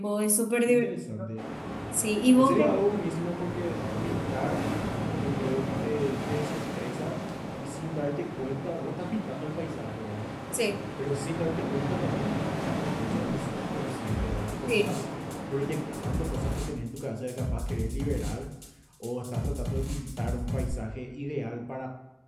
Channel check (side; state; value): both; identical; correlation 1.00